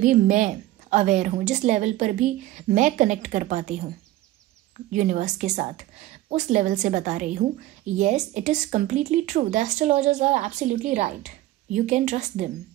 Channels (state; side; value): quieter; left; 15.7 dB